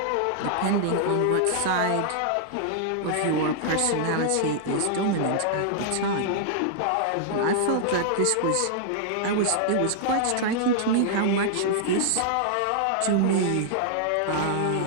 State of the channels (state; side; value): different; both; correlation -0.01